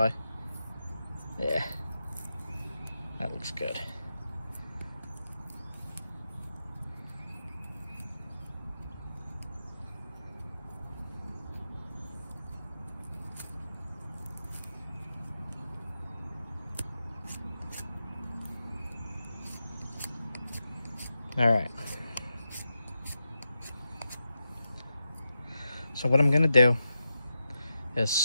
Yeah, that looks good. All right. So what I'm gonna do is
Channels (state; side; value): inverted; both; correlation -0.89